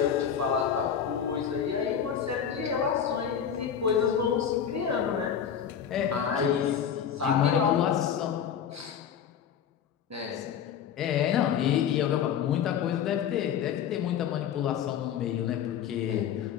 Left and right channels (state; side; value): quieter; right; 8.3 dB